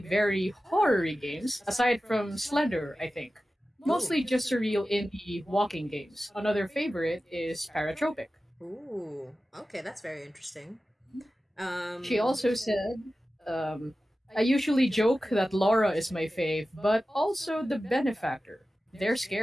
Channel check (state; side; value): normal; both; correlation 0.95